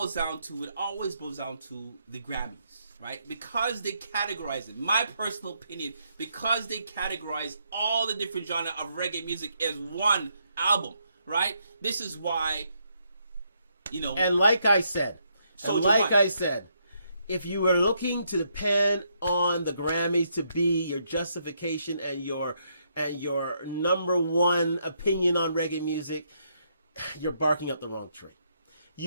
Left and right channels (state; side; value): inverted; both; correlation -0.76